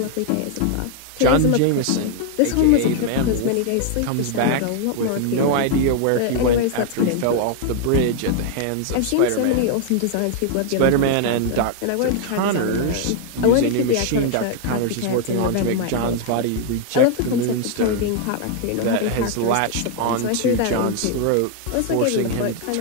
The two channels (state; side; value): different; both; correlation 0.00